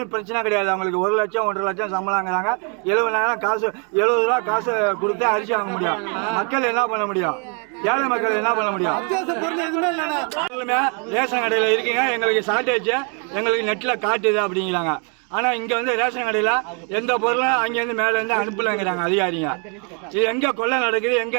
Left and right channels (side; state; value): left; quieter; 37.8 dB